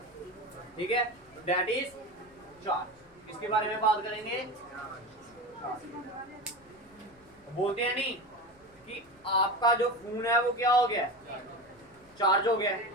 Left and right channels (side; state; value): left; noise; rumble, 29 dB below the sound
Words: ठीक है, दैट इज चार्ज। इसके बारे में बात करेंगे। बोलते हैं नहीं कि आपका जो फोन है वो क्या हो गया, चार्ज हो गया।